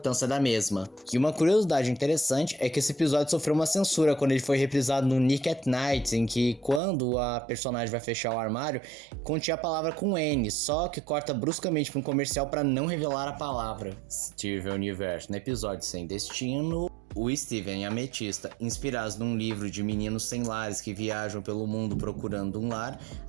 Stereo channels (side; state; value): left; drops out; at 6.8 s